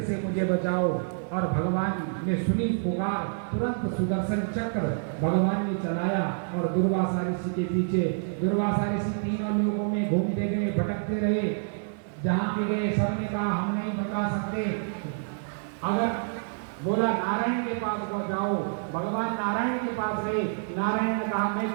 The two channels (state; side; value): silent; left; digital silence